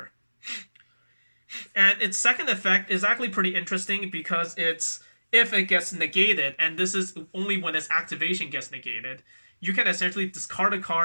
And its second effect is actually pretty interesting because it's if it gets negated, and this is only when its activation gets negated, you can essentially discard a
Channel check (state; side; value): inverted; both; correlation -1.00